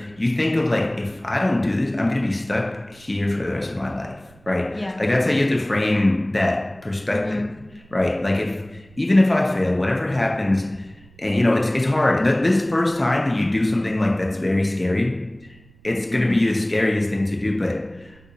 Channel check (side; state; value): right; noise; rumble, 27 dB below the sound